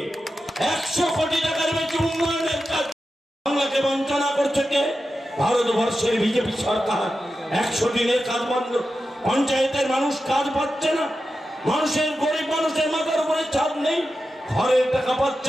100 কোটি টাকার বেশি উন্নয়নের কাজ। বাংলাকে বঞ্চনা করছে কে? ভারতবর্ষের বিজেপি সরকার। 100 দিনের কাজ বন্ধ, পঞ্চায়েতের মানুষ কাজ পাচ্ছে না, মানুষের, গরিব মানুষের মাথার উপরে ছাদ নেই, ঘরের টাকা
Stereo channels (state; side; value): normal; both; correlation 0.91